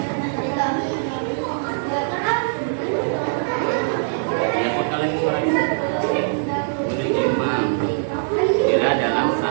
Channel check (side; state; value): left; silent; digital silence